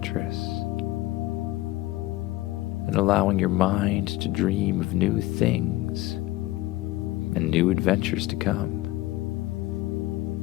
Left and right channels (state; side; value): quieter; right; 17.9 dB